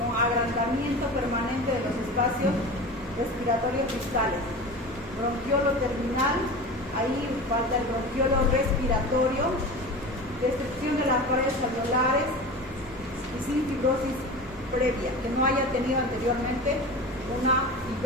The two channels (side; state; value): both; normal; correlation 0.31